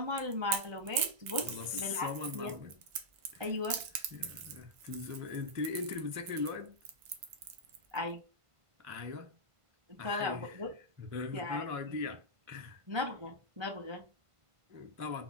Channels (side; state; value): left; late; 1.5 ms